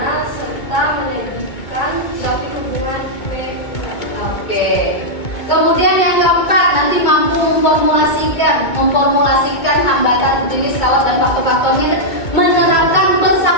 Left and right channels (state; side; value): late; right; 2.2 ms